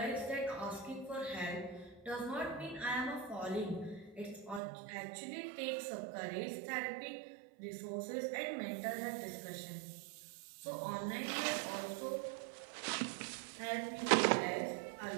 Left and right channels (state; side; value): drops out; left; at 4.6 s